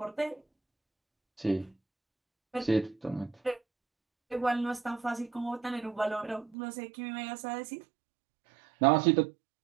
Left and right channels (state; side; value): drops out; left; at 6.6 s